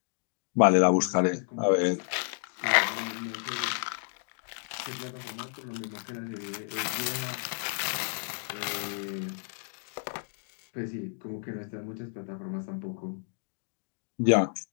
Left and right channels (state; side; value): silent; right; 57 dB below the other